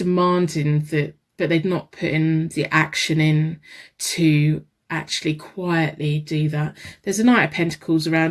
that, but they're not putting the action in to actually quietly do that. There's a Knight of Pentacles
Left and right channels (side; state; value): both; identical; correlation 1.00